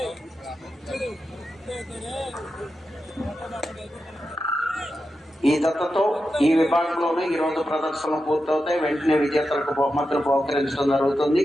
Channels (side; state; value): both; normal; correlation 0.89